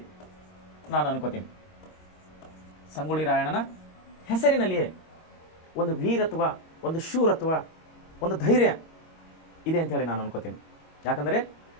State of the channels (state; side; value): late; right; 24 ms